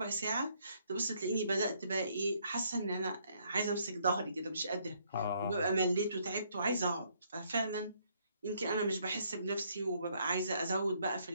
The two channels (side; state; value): both; inverted; correlation -0.69